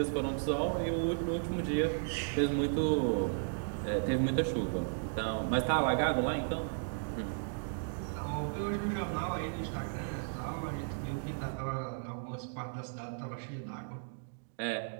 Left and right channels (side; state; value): left; silent; digital silence